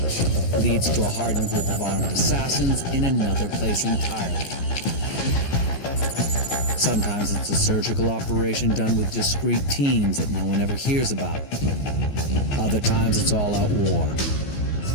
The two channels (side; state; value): right; late; 14 ms